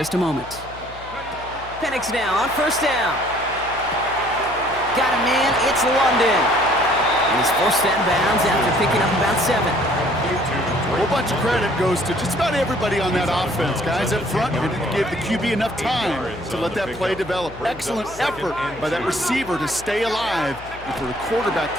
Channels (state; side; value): noise; left; hum, 17 dB below the sound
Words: a moment. Penix now on 1st down. Got a man, it's London. And he's forced out of bounds after picking up about 7. A whole bunch of credit goes to just about everybody on that offense. Guys up front didn't give the QB enough time to let that play develop. Excellent effort by that receiver to stay alive and for the quarterback